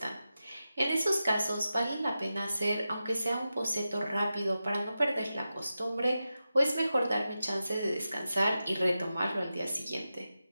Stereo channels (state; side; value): inverted; both; correlation -0.92